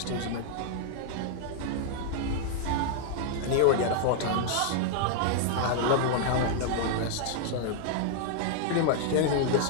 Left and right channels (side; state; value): both; different; correlation -0.01